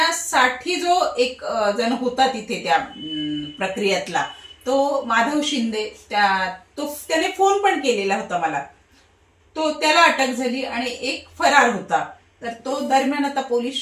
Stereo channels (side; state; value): both; identical; correlation 1.00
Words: जो एक जण होता तिथे त्या प्रक्रियेतला, तो माधव शिंदे, त्याने फोन पण केलेला होता मला, त्याला अटक झाली आणि एक फरार होता. तर तो दरम्यान आता पोलीस